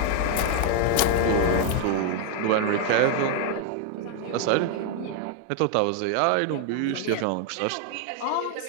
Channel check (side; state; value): both; different; correlation 0.00